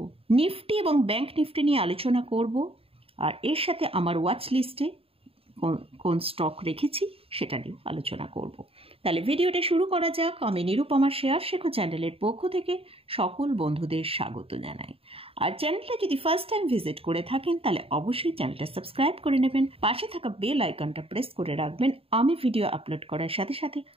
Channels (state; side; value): late; left; 0.27 ms